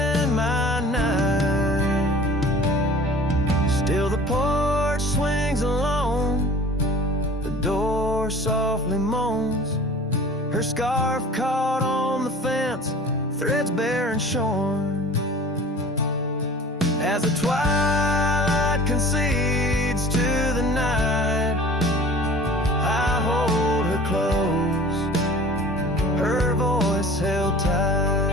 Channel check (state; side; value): normal; both; correlation 0.44